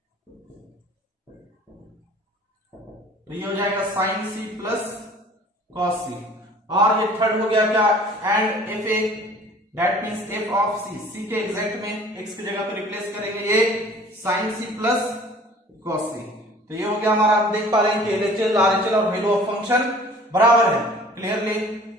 तो ये हो जाएगा sine c plus cos c। और ये थर्ड हो गया क्या, and F A, that means F of c, c के एग्जैक्ट में x की जगह पे रिप्लेस करेंगे ये sine c plus cos c। तो ये हो गया हमारा, आप देख पा रहे हैं कि एलएचएल आरएचएल और वैल्यू ऑफ फंक्शन बराबर है clearly.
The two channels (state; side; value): normal; both; correlation 0.49